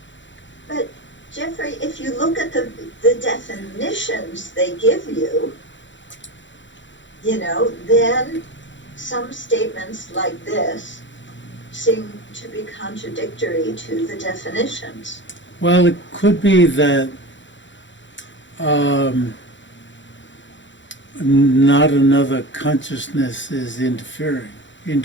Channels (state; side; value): late; right; 0.54 ms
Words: But Jeffrey, if you look at the definitions they give you, you know, then some statements like this seem to be contradictory to the definitions. Well, it could be that not another consciousness is